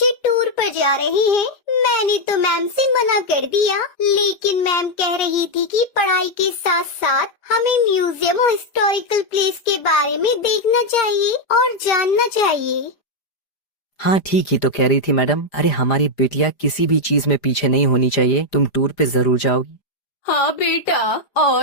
टूर पर जा रहे हैं। मैंने तो मैम से मना कर दिया, लेकिन मैम कह रही थी कि पढ़ाई के साथ साथ हमें म्यूजियम और हिस्टोरिकल प्लेस के बारे में देखना चाहिए और जानना चाहिए। हाँ ठीक ही तो कह रही थी मैडम। अरे हमारी बेटियां किसी भी चीज में पीछे नहीं होनी चाहिए। तुम टूर पे जरूर जाओगी। हाँ बेटा,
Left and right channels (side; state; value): right; late; 5.0 ms